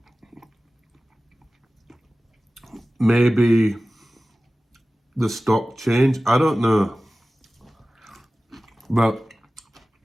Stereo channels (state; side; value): normal; both; correlation 0.96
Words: Maybe the stock changed, I don't know. But